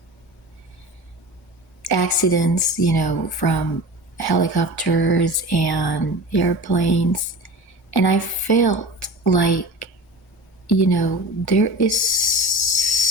accidents, from helicopters and airplanes. And I felt like, there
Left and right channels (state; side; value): normal; both; correlation 0.34